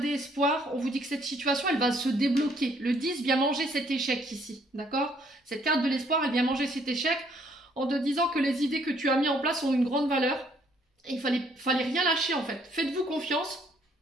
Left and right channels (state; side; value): normal; both; correlation 0.65